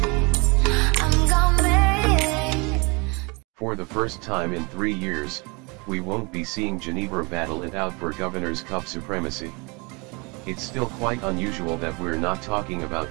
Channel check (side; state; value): left; quieter; 28.8 dB